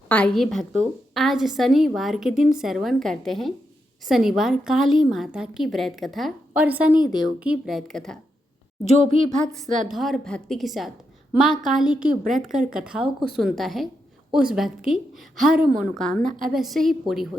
आइए भक्तों, आज शनिवार के दिन श्रवण करते हैं शनिवार काली माता की व्रत कथा और शनि देव की व्रत कथा। जो भी भक्त श्रद्धा और भक्ति के साथ माँ काली की व्रत कर कथाओं को सुनता है, उस भक्त की हर मनोकामना अवश्य ही पूरी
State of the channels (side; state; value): both; normal; correlation 0.84